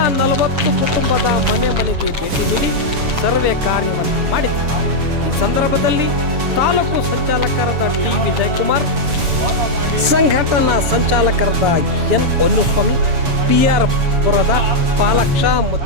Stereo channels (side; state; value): left; late; 7.2 ms